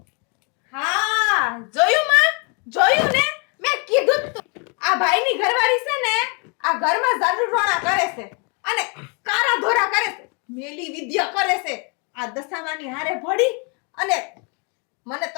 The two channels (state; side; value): quieter; right; 34.8 dB